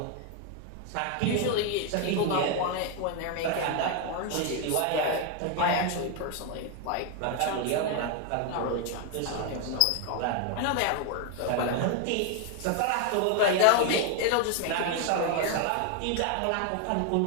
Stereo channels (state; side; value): different; both; correlation 0.01